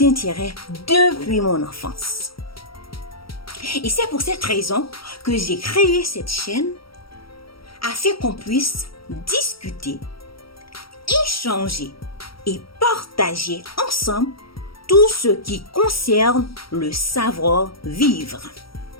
depuis mon enfance. Et c'est pour cette raison que j'ai créé cette chaîne afin qu'on puisse discuter, échanger et partager ensemble tout ce qui concerne le savoir-vivre.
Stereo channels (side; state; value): right; late; 0.75 ms